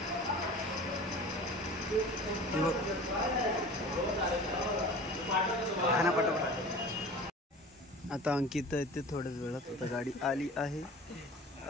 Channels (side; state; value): both; normal; correlation 0.40